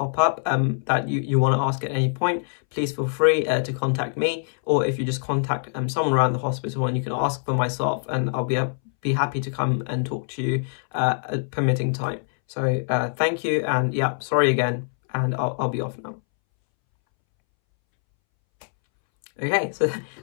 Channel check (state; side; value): silent; right; 63 dB below the other